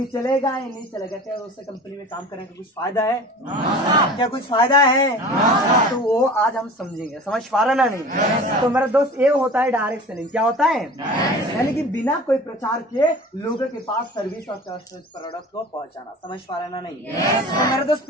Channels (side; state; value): both; normal; correlation 0.39